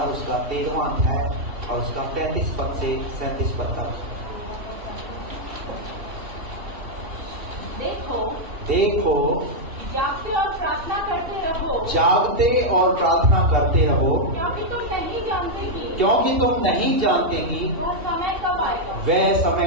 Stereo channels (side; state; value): left; late; 2.7 ms